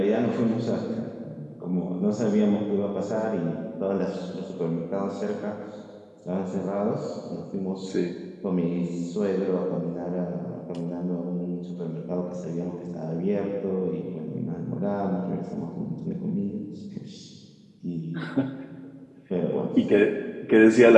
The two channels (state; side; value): identical; both; correlation 1.00